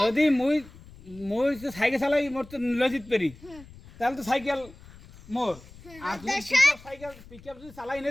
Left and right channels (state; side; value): noise; left; rumble, 21 dB below the sound